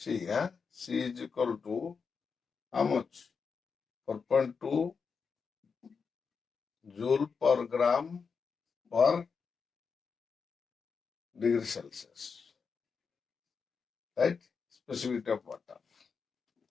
is equal to how much? 4.2 joule per gram per degree Celsius. Right? Specific heat of water.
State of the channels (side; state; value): right; quieter; 5.5 dB